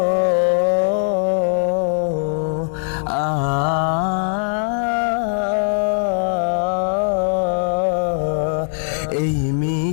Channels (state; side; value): silent; right; digital silence